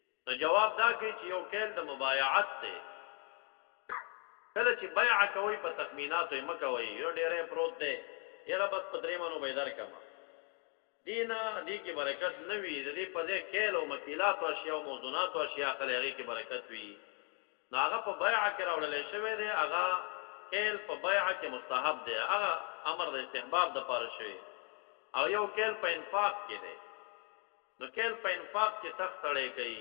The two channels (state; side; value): quieter; right; 39.2 dB